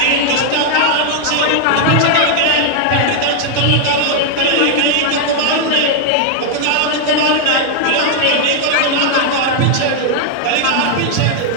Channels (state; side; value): different; both; correlation 0.00